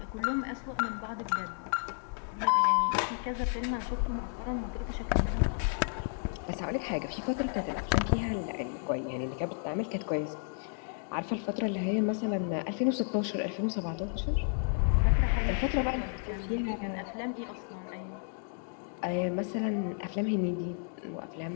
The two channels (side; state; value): right; silent; 56 dB below the other